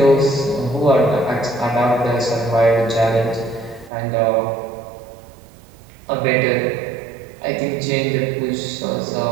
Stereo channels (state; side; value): drops out; left; at 3.9 s